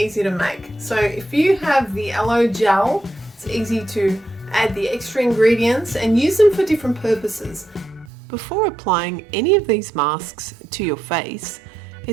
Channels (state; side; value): drops out; left; at 8.1 s